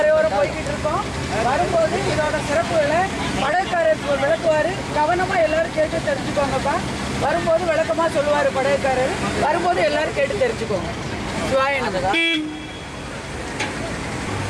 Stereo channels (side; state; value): both; identical; correlation 1.00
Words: போய்கிட்டு இருக்கோம். வரும்போது இதோட சிறப்புகளை படகுக்காரர் விளக்குவார். கவனமாக எல்லாரும் கேட்டு தெரிஞ்சுக்கோங்கப்பா. வரும்போது விளக்கமாக சொல்லுவார் படகுக்காரர். வரும்போது எல்லாரும் கேட்டு தெரிஞ்சுக்கோங்க. சிவாய நமக.